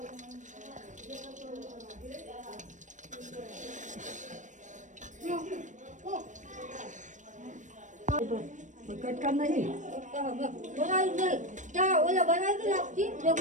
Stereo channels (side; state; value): left; late; 0.36 ms